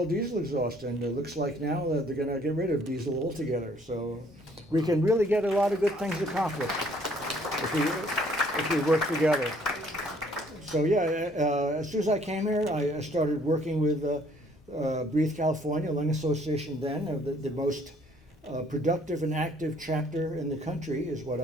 diesel exhaust, and it looks like now that they're going to get rid of diesel altogether. So we can really get a lot of good things accomplished if we work together. So yeah, as soon as I came here, I started working with Breathe California, Lung Association then, the most productive and active chapter in the country, is what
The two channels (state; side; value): normal; both; correlation 0.62